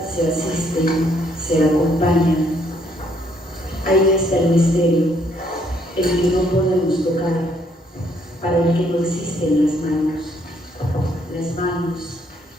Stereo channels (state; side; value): normal; both; correlation 0.69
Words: se asisten, se acompañan. Ahí está el misterio, el que no podemos tocar, para el que no existen las manos,